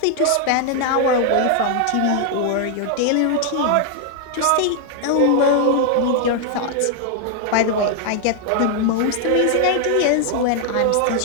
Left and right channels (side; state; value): both; different; correlation 0.00